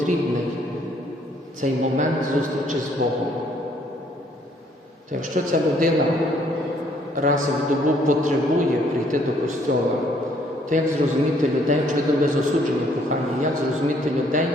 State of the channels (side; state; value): both; normal; correlation 0.65